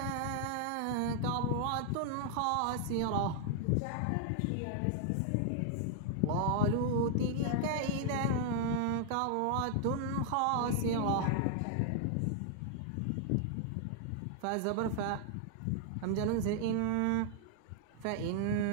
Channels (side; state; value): both; different; correlation 0.00